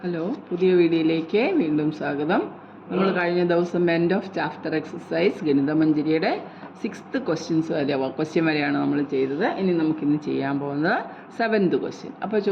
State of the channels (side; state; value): both; identical; correlation 1.00